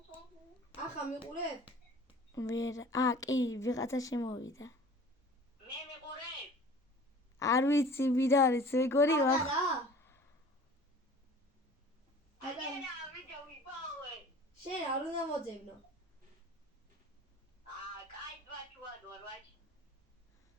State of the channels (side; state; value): both; normal; correlation 0.45